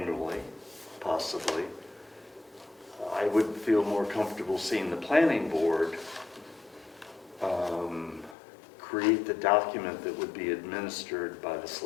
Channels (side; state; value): right; drops out; at 8.3 s